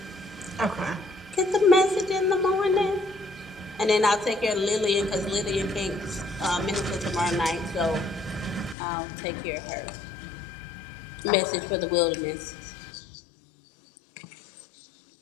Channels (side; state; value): right; drops out; at 8.8 s